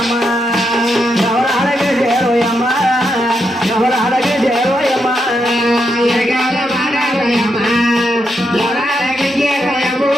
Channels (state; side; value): normal; both; correlation 0.82